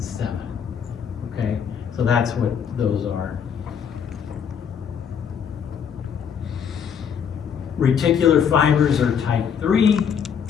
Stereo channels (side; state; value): right; quieter; 7.5 dB